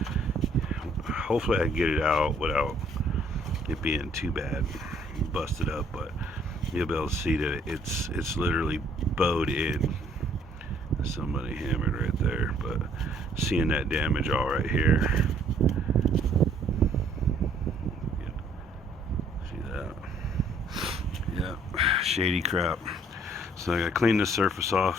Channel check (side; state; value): both; normal; correlation 0.62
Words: hopefully I can get it out without it being too bad, busted up, but you'll be able to see that it's literally bowed in. Somebody hammered right there, but seeing that damage all right here. See that? Yeah, shady crap. So I gotta clean the surface